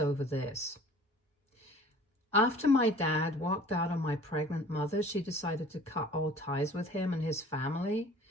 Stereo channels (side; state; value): both; normal; correlation 0.48